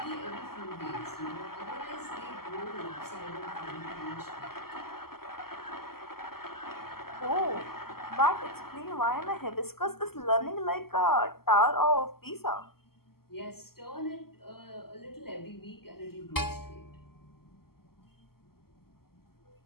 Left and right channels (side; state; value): right; late; 0.94 ms